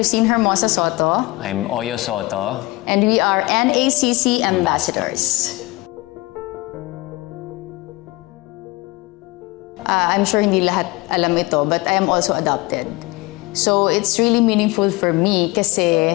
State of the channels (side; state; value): right; quieter; 21.9 dB